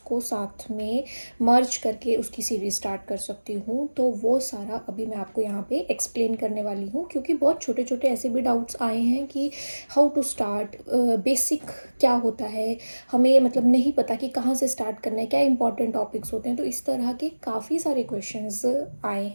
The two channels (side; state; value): both; inverted; correlation -1.00